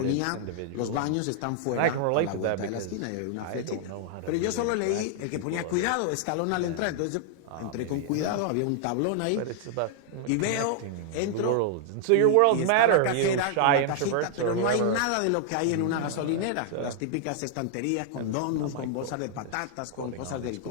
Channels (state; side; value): different; both; correlation -0.01